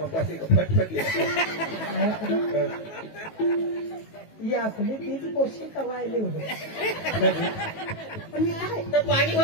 फटफट ही आपली तीच पोषी कवायले होते पण मी काय तर पाणी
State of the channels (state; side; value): late; right; 18 ms